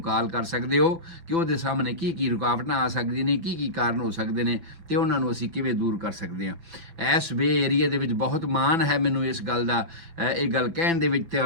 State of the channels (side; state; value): left; late; 6.0 ms